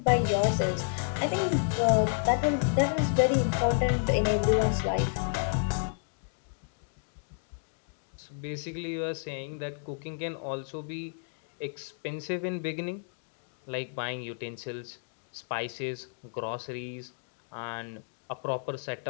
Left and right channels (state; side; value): silent; right; digital silence